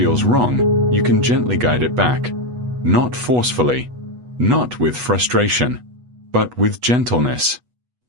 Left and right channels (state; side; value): late; left; 8.2 ms